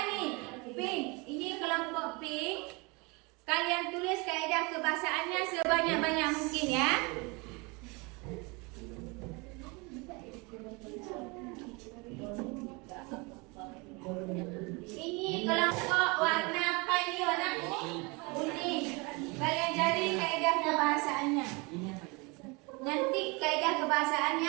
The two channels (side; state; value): left; quieter; 27.9 dB